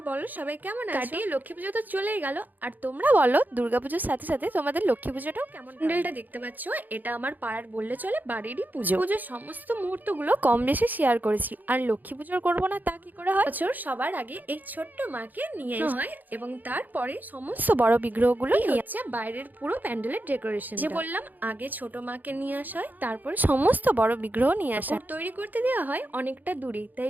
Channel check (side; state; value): left; late; 0.084 ms